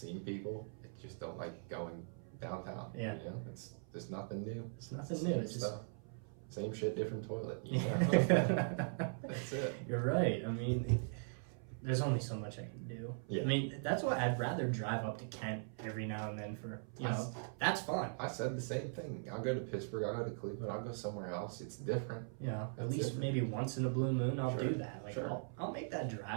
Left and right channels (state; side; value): silent; left; 51 dB below the other